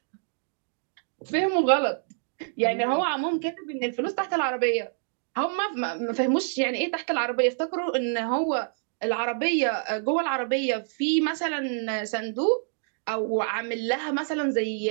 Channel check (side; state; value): left; silent; digital silence